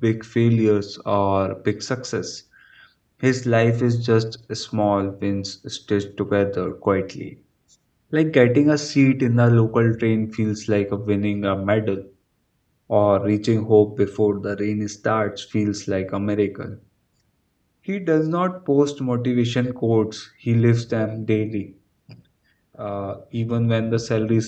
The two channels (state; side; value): identical; both; correlation 1.00